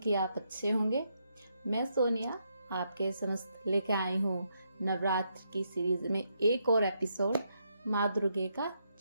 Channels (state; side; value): inverted; both; correlation -0.79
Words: आप अच्छे होंगे। मैं सोनिया आपके समस्त लेके आई हूँ नवरात्र की सीरीज में एक और एपिसोड, माँ दुर्गे का